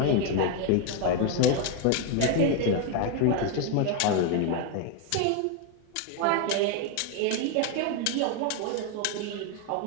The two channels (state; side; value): different; both; correlation 0.01